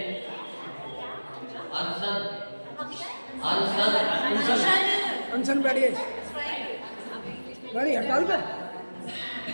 अनशन अनशन अनशन बैठिए बैठिए हड़ताल पे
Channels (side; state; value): both; inverted; correlation -1.00